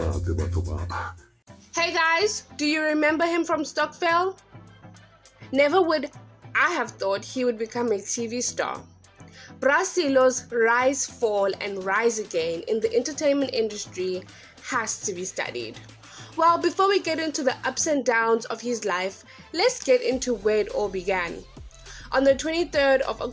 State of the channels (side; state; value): both; identical; correlation 1.00